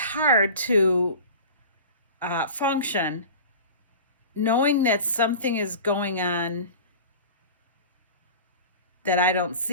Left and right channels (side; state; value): both; inverted; correlation -0.36